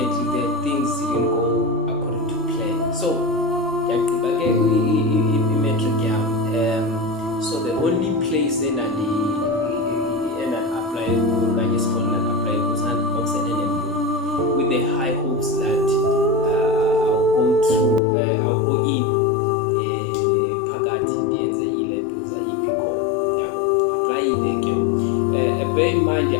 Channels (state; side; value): drops out; right; at 18.0 s